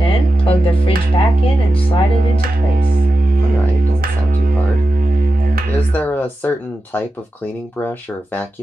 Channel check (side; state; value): both; normal; correlation 0.92